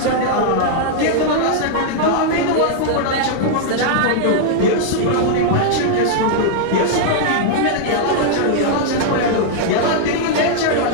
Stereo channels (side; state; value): both; different; correlation -0.01